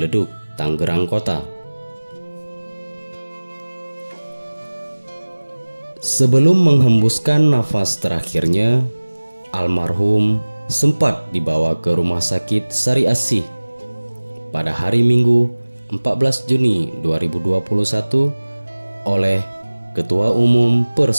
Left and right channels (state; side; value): inverted; both; correlation -1.00